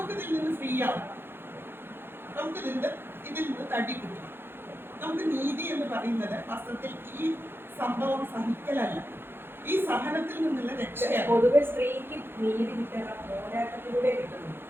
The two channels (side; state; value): left; late; 0.11 ms